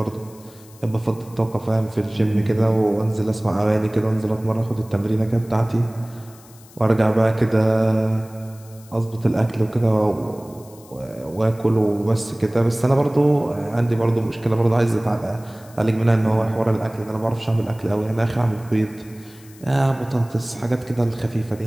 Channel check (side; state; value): left; noise; hiss, 24 dB below the sound